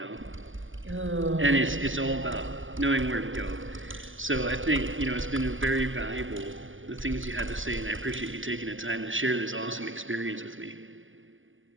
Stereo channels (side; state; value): left; late; 0.58 ms